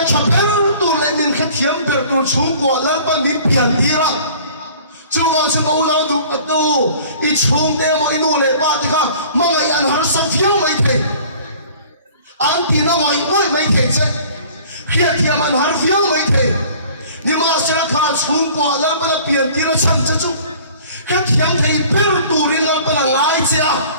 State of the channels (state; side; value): inverted; both; correlation -0.49